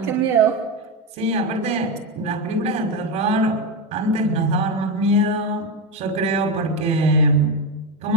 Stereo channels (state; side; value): normal; both; correlation 0.13